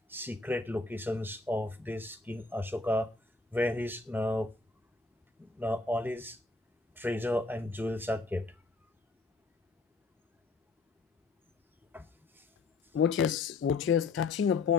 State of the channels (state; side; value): quieter; right; 3.8 dB